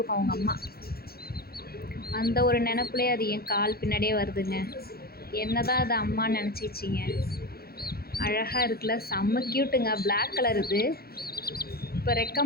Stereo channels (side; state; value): right; late; 0.45 ms